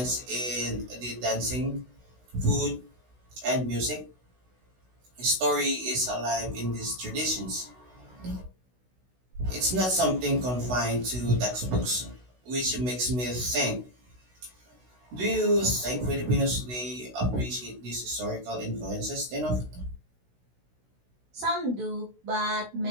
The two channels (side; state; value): left; late; 16 ms